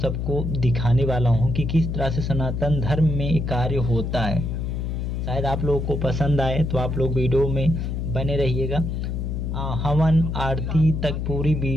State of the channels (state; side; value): noise; left; hum, 2 dB below the sound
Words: दिखाने वाला हूँ कि किस तरह से सनातन धर्म में कार्य होता है। शायद आप लोगों को पसंद आए तो आप लोग वीडियो में बने रहिएगा। हवन आरती तक पूरी